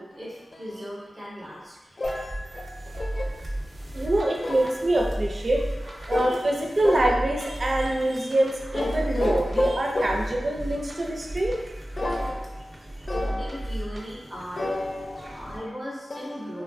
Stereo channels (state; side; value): normal; both; correlation 0.95